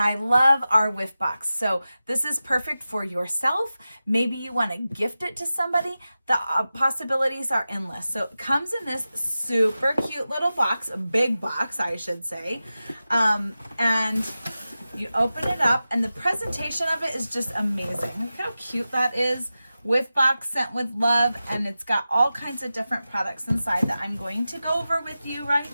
love our whiff box. So this is perfect for yourself. Maybe you want to gift it to somebody. The possibilities are endless. So it comes in this super cute little box, a big box, I should say. And you open it up and the presentation of it is just amazing. Look how cute that is. Whiff box sent with love, and it's got all kinds of different products inside that I'm going to go over with you right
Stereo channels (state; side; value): inverted; both; correlation -0.94